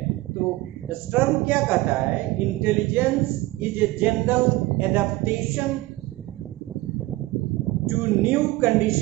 तो स्टर्न क्या कहता है? Intelligence is a general adaptation to new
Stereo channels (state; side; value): quieter; left; 19.1 dB